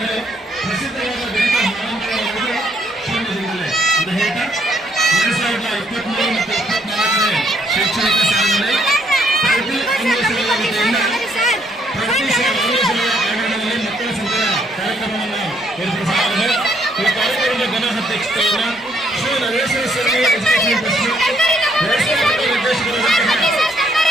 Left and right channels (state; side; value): normal; both; correlation 0.70